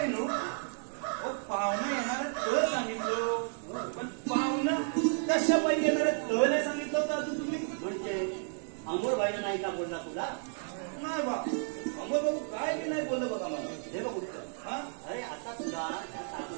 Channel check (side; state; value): left; silent; 56 dB below the other